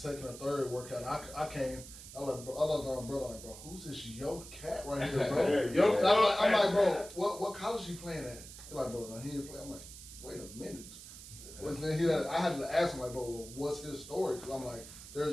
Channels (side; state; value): right; noise; hiss, 14 dB below the sound